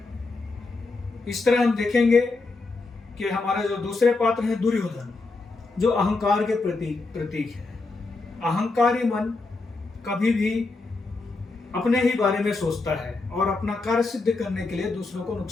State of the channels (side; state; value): right; quieter; 3.6 dB